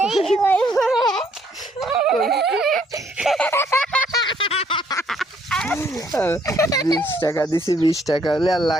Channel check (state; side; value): normal; both; correlation 0.67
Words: वही 20 টাকা দিছি 20 টাকা হলে আর